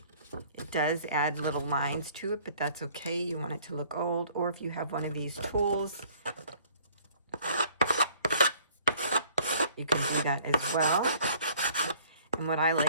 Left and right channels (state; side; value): inverted; both; correlation -0.56